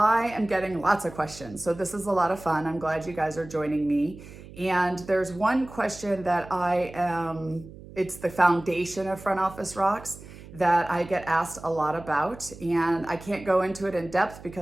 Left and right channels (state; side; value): noise; right; hum, 17 dB below the sound